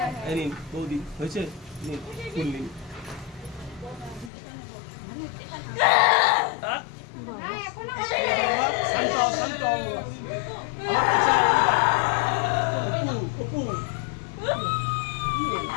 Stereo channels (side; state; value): right; drops out; at 4.3 s